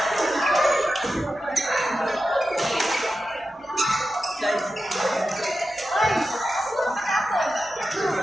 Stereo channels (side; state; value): both; normal; correlation 0.91